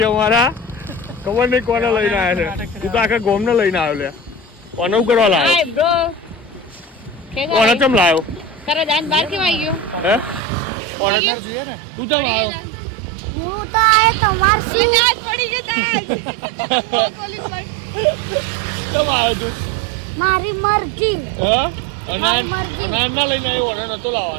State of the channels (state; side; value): drops out; left; at 10.4 s